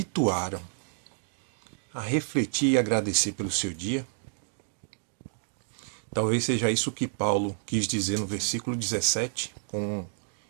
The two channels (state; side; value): silent; left; digital silence